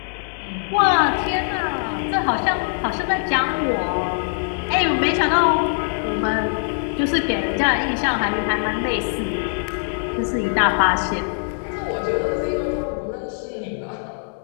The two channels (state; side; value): silent; right; 63 dB below the other